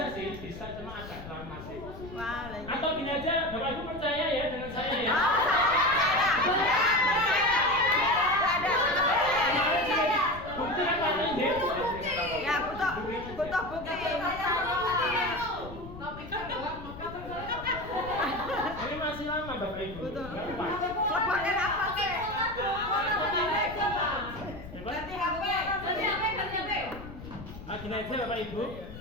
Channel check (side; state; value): left; noise; rumble, 13 dB below the sound